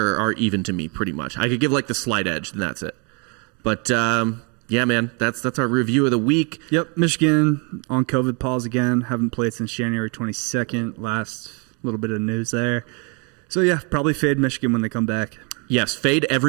are even to me pretty much. I could give like the slight edge, and that's it. But yeah, man, that's our review of the week. Yep, Michigan on COVID pause again. Haven't played since January 22nd. Last little bit of news there. So yeah, probably fade Michigan when they come back. Yes, fade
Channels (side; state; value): left; quieter; 34.1 dB